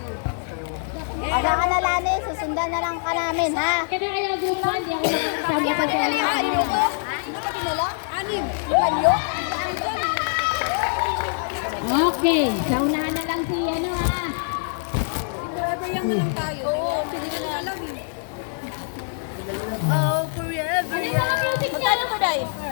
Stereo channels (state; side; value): silent; right; digital silence